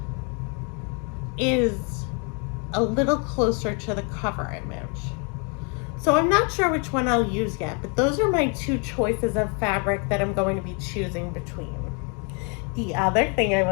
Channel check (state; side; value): quieter; right; 35.4 dB